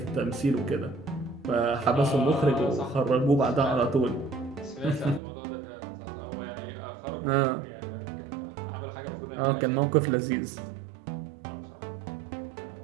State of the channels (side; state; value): left; drops out; at 5.2 s